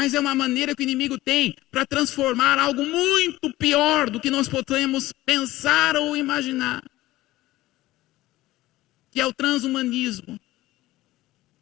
é uma maneira que o inimigo tem para transformar algo muito pior do que nós podemos pensar ou imaginar. Que é o transhumanismo.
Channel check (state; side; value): quieter; right; 17.1 dB